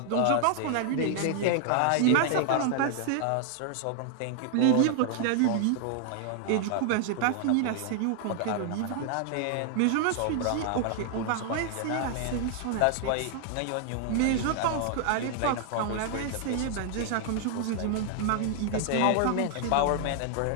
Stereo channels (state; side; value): different; both; correlation 0.00